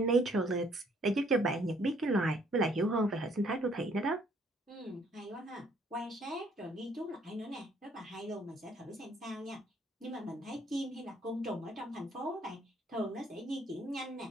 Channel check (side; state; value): both; normal; correlation 0.64